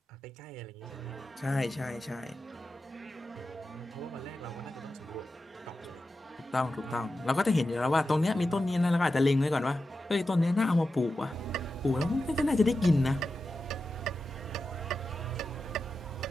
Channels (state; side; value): normal; both; correlation 0.91